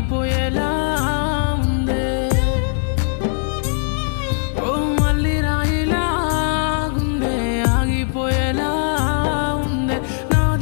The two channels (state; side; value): silent; right; 56 dB below the other